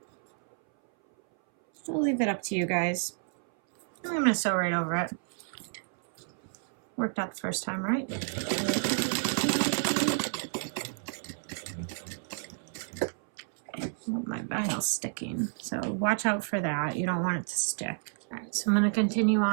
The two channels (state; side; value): silent; left; 58 dB below the other